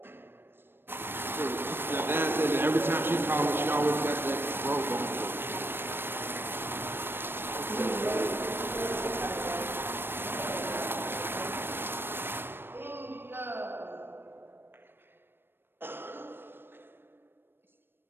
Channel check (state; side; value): late; left; 0.10 ms